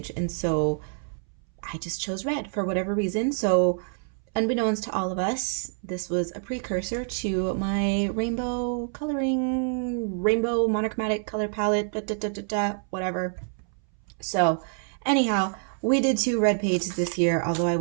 and so I just chose red for whatever reason. So unbeknownst to all of us, this was a precursor to my rainbow monochromatic color palette, whatever. So anyhow, we did 2 red pages this year, although I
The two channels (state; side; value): silent; left; 60 dB below the other